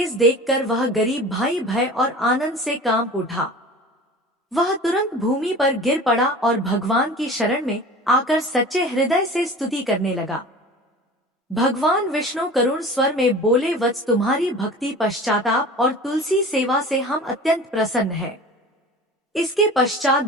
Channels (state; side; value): normal; both; correlation 0.39